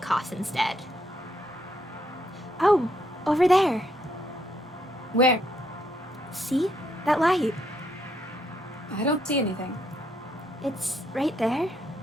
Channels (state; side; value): normal; both; correlation 0.74